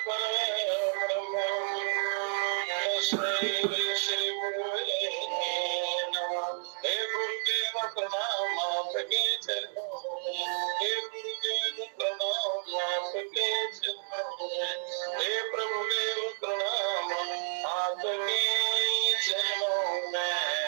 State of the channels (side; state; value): left; silent; digital silence